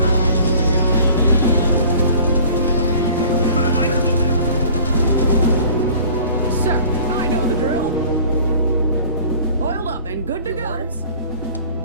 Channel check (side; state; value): both; inverted; correlation -0.48